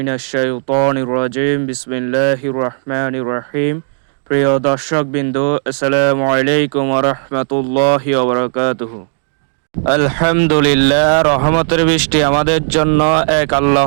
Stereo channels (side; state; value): left; silent; digital silence